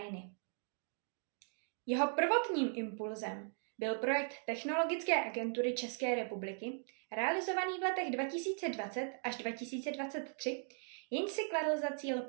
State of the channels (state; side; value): silent; left; 52 dB below the other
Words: Jeho prvotním impulzem byl projekt Technologické agentury České republiky, realizovaný v letech 2020 až 2023, jenž si kladl za cíl